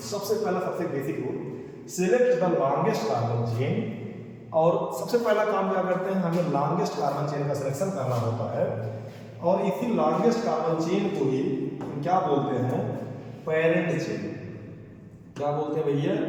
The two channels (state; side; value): identical; both; correlation 1.00